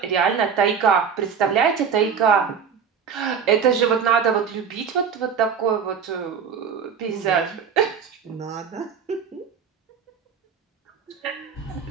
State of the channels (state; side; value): quieter; left; 6.8 dB